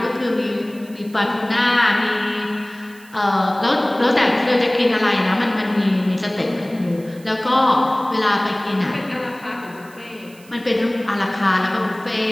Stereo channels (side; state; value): right; noise; hiss, 25 dB below the sound